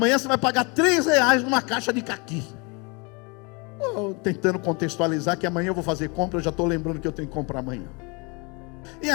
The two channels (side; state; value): right; quieter; 30.4 dB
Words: você vai pagar R$3 numa caixa de caqui. Tentando contextualizar que amanhã eu vou fazer compra, eu já estou lembrando que eu tenho que comprar amanhã. E